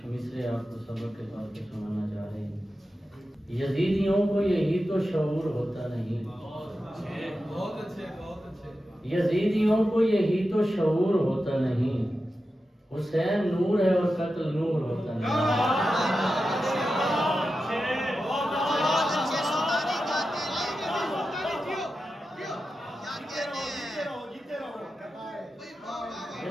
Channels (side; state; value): both; normal; correlation 0.91